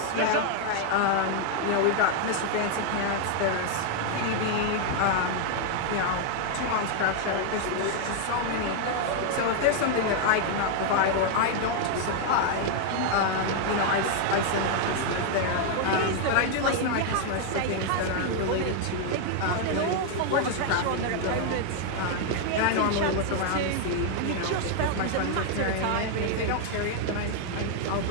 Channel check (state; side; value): different; both; correlation 0.00